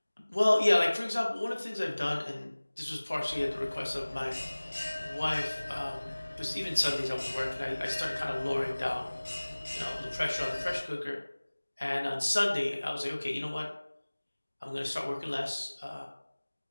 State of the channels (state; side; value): inverted; both; correlation -1.00